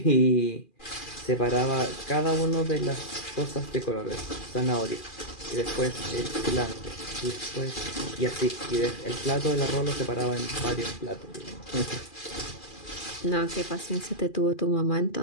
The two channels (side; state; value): right; late; 2.4 ms